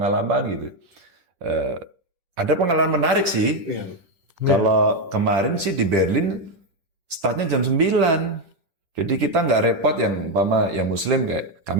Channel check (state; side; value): late; left; 10 ms